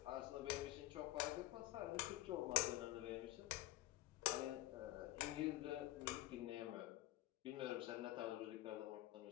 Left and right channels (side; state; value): right; quieter; 16.0 dB